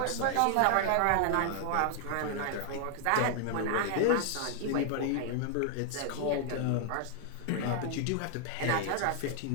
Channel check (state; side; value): different; both; correlation 0.00